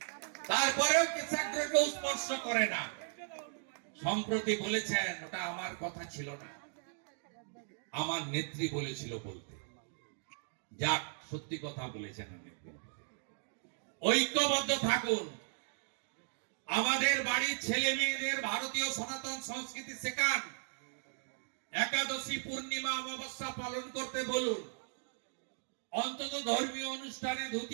তারপরেও কেশাগ্রকে স্পর্শ করে না। সম্প্রতি বলেছেন ওটা আমার কথা ছিল না, আমার নেত্রী বলেছিল বলতে। যাক, সত্যি কথা বলেছেন নেত্রী। ঐক্যবদ্ধ থাকুন। আমাদের বাড়ির ছেলে মেয়েদের ভারতীয় সনাতন সংস্কৃতি শেখান। একাদশী, পূর্ণিমা, অমাবস্যা পালন করতে বলুন। অন্তত ধর্মীয় অনুষ্ঠানে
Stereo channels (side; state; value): left; silent; digital silence